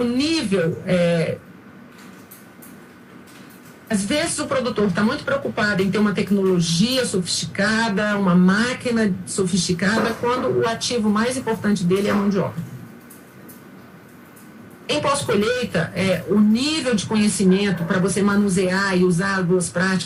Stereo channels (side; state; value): both; identical; correlation 1.00